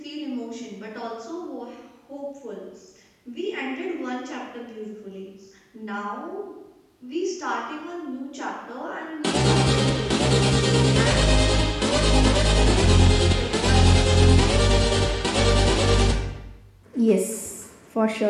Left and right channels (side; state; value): both; identical; correlation 1.00